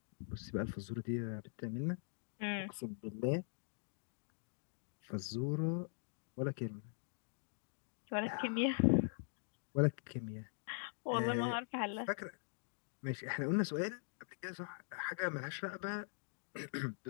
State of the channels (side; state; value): right; silent; digital silence